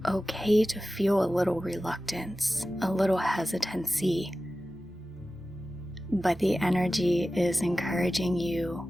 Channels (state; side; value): normal; both; correlation 0.95